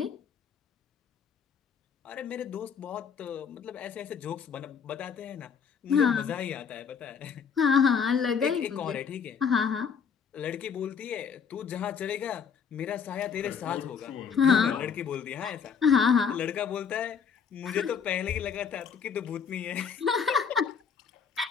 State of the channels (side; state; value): right; quieter; 6.7 dB